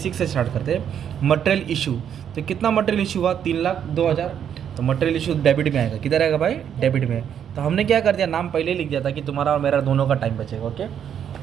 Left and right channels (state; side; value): quieter; left; 8.8 dB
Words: से स्टार्ट करते हैं। मटेरियल इशू, तो कितना मटेरियल इशू हुआ? 3,02,000। तो मटेरियल इशू डेबिट में आएगा, किधर आएगा भाई? डेबिट में। तो हमने क्या कर दिया, नाम पहले ही लिख दिया था कि तुम्हारा और मेरा दोनों का टाइम बचेगा। ओके,